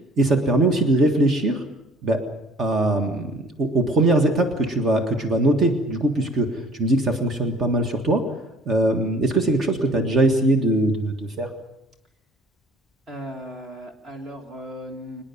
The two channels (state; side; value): normal; both; correlation 0.54